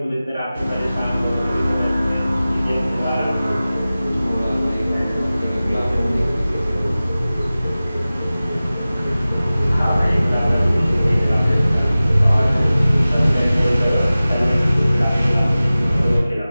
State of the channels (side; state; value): both; inverted; correlation -0.97